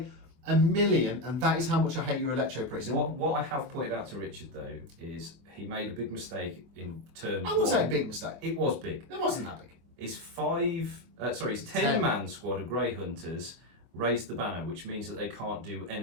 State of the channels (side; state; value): left; late; 24 ms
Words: 1,000,000, and that is how much I hate your Electro Priest. What I have pointed out to Richard though is he made a big mistake in turn. I wouldn't say a big mistake. It was big. It wasn't that big. His 10-man squad of Grey Hunters raised the banner, which means that they can't do